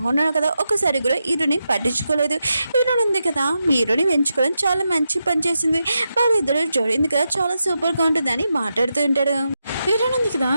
కదా ఒకసారి కూడా హీరోని పట్టించుకోలేదు. హీరోని ఉంది కదా హీరోని ఎంచుకోవడం చాలా మంచి పని చేసింది, వాళ్ళిద్దరు జోడింది కదా చాలా సూపర్ గా ఉంటుందని మాట్లాడుతూ ఉంటాడు. హీరోని ఉంది కదా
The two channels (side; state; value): both; inverted; correlation -0.87